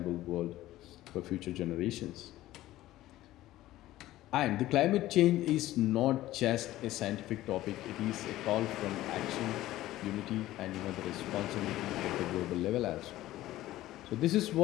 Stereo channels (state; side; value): quieter; right; 15.4 dB